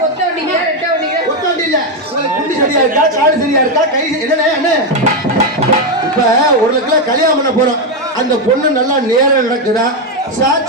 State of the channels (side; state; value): both; normal; correlation 0.06